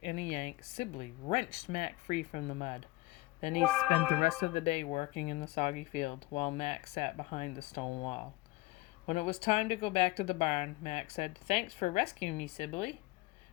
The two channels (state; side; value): quieter; right; 20.6 dB